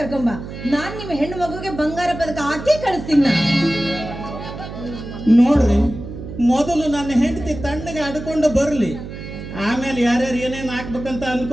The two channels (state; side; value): noise; right; hum, 10 dB below the sound